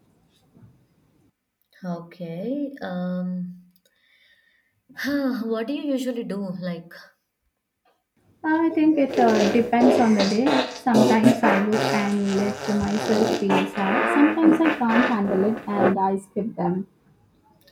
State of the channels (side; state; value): both; identical; correlation 1.00